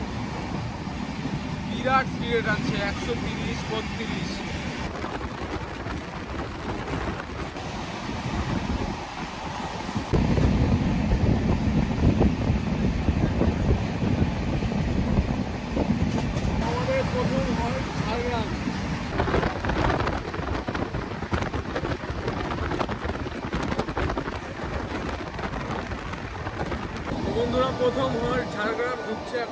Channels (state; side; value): identical; both; correlation 1.00